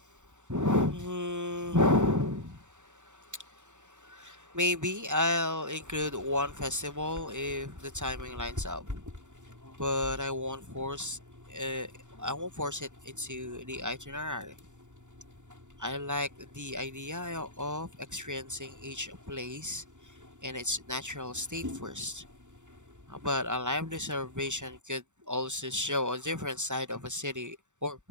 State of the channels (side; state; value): left; late; 0.85 ms